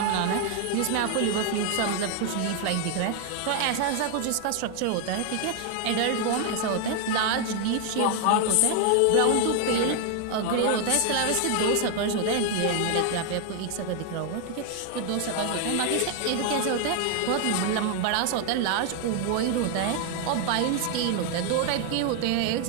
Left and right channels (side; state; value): both; different; correlation 0.00